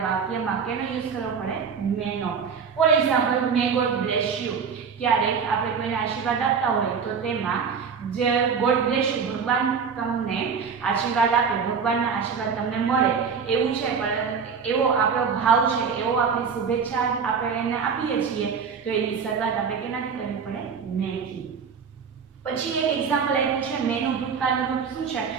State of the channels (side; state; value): left; quieter; 6.1 dB